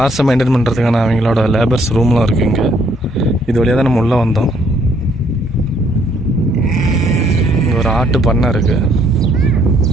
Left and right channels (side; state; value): both; normal; correlation 0.67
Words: மெயின்டைன் பண்ணுறதுக்கான அவங்களோட லேபர்ஸ் ரூம்லாம் இருக்குது இங்கே. இது வழியாக தான் நம்ம உள்ளே வந்தோம். இங்கே ஒரு ஆட்டு பண்ணை இருக்குது.